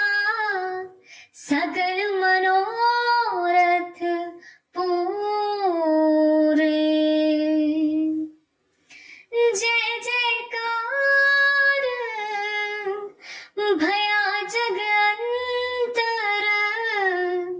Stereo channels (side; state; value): both; identical; correlation 1.00